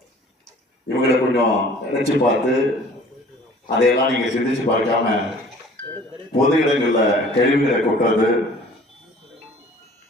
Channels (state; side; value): normal; both; correlation 0.50